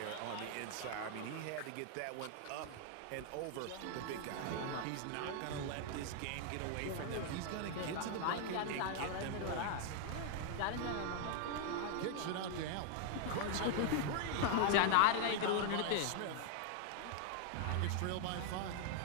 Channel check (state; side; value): different; both; correlation 0.00